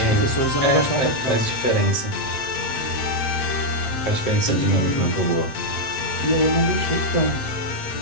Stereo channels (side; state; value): right; late; 7.7 ms